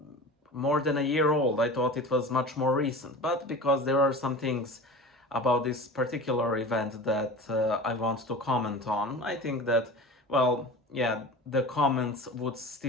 more than a year old. I thought it was much more recent, but because there are some things about this particular event that I want to comment on, I think that, well, yeah, the comments would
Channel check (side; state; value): both; normal; correlation 0.35